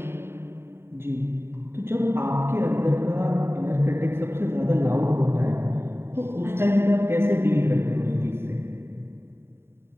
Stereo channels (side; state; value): left; late; 0.11 ms